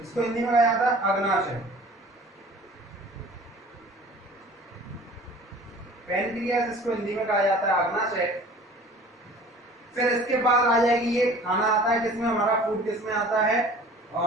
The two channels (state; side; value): normal; both; correlation 0.46